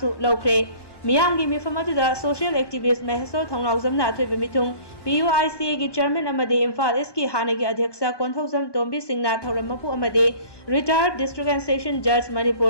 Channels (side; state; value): right; late; 1.2 ms